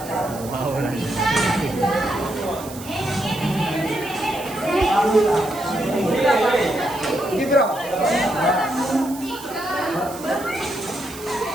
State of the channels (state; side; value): noise; right; hiss, 15 dB below the sound